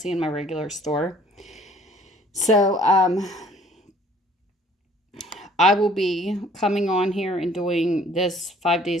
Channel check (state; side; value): normal; both; correlation 0.56